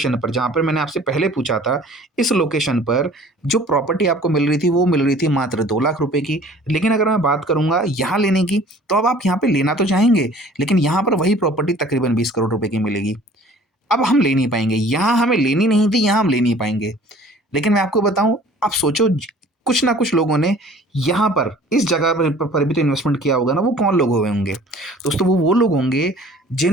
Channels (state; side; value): normal; both; correlation 0.50